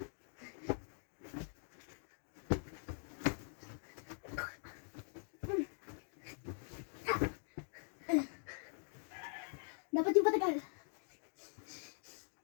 Dapat yung patagal.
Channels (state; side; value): silent; right; digital silence